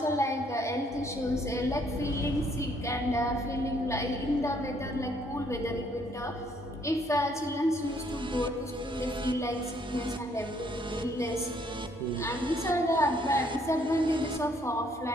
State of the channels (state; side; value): normal; both; correlation 0.66